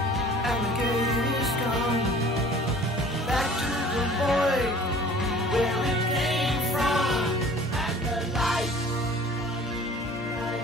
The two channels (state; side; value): normal; both; correlation 0.48